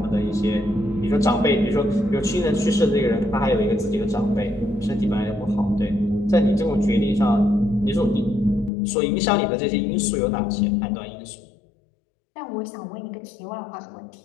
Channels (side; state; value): right; drops out; at 8.7 s